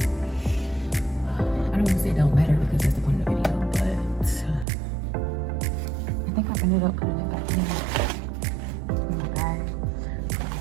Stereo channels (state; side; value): drops out; left; at 4.7 s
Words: I don't want to say it don't matter because that's the point of the video, but I think I ended up putting it back in my bag.